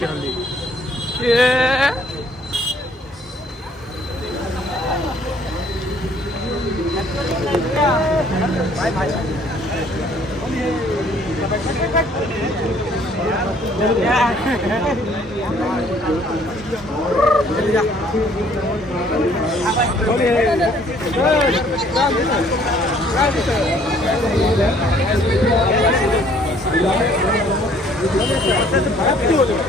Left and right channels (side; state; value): both; normal; correlation 0.60